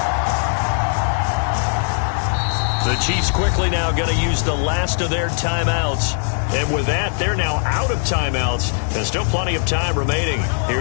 The Chiefs quickly now going to use the last of their timeouts. And with that, they're now out of timeouts. There's still plenty of time remaining here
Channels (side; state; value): right; silent; digital silence